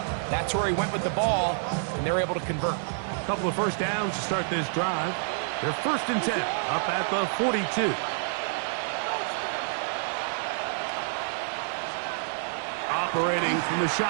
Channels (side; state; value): left; silent; digital silence